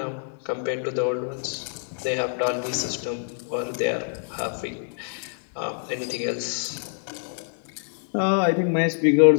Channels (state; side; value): silent; right; digital silence